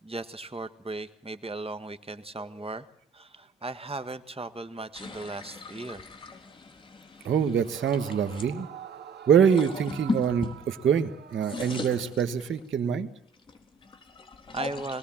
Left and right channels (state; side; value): quieter; left; 6.0 dB